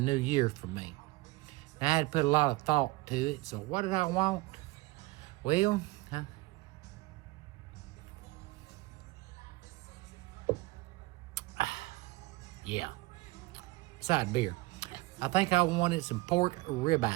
year for me. And I had to put a lot of thought to it. So what did I want? Well, yeah, side beer. I think I wanted some pork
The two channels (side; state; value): left; quieter; 21.1 dB